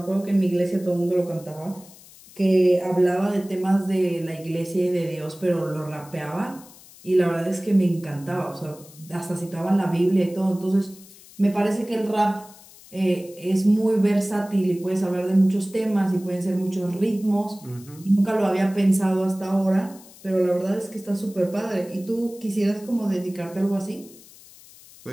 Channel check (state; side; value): noise; left; hiss, 22 dB below the sound